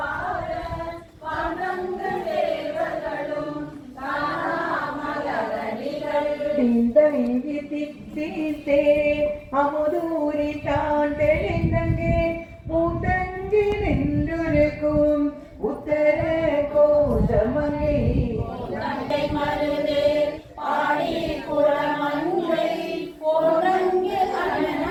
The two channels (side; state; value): both; identical; correlation 1.00